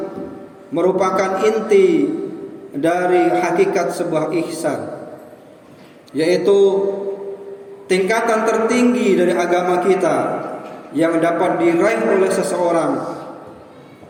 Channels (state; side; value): identical; both; correlation 1.00